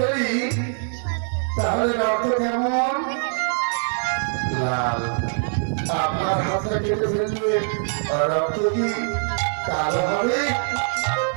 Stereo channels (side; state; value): left; silent; digital silence